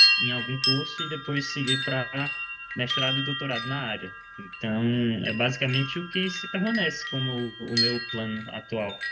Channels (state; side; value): identical; both; correlation 1.00